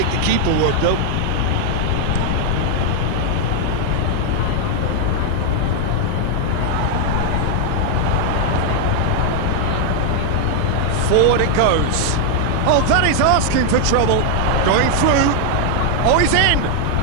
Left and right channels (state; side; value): different; both; correlation 0.00